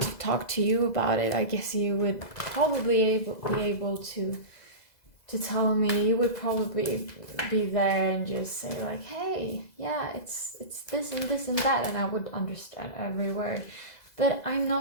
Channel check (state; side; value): late; right; 2.0 ms